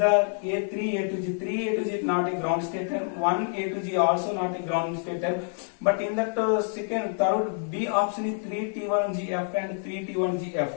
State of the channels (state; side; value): silent; right; 60 dB below the other